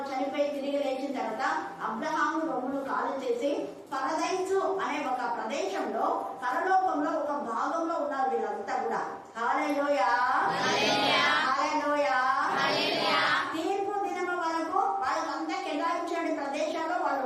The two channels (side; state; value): both; identical; correlation 1.00